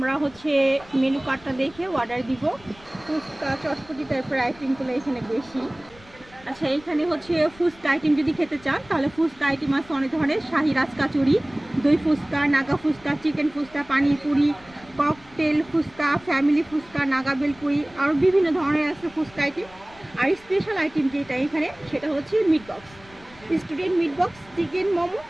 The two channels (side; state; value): left; noise; rumble, 24 dB below the sound